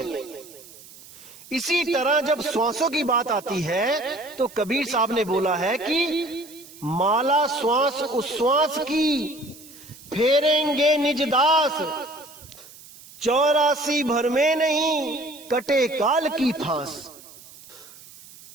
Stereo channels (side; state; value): right; noise; hiss, 20 dB below the sound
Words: इसी तरह जब श्वासों की बात आती है तो कबीर साहब ने बोला है कि माला श्वास उश्वास की, फेरेंगे निज दास, 84 भर में नहीं कटे काल की फांस।